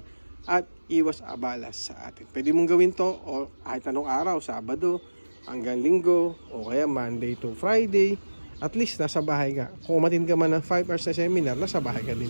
at iwas abala sa atin. Pwede mong gawin to o kahit anong araw, Sabado hanggang Linggo o kaya Monday to Friday. At least nasa bahay ka. Kung umatin ka man ng 5 hours na seminar, nasa bahay ka din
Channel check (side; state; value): both; inverted; correlation -1.00